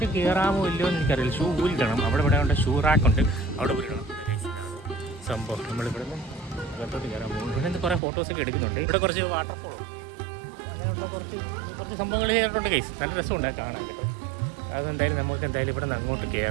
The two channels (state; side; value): drops out; left; at 8.0 s